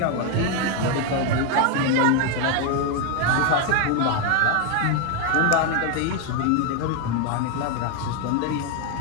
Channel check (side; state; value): both; different; correlation 0.01